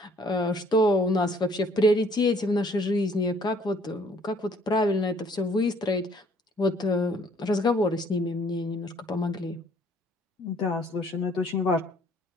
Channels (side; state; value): both; normal; correlation 0.60